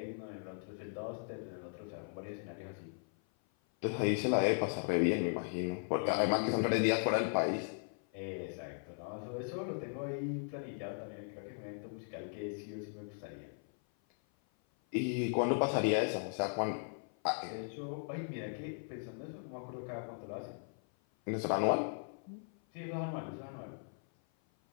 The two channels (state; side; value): silent; right; 53 dB below the other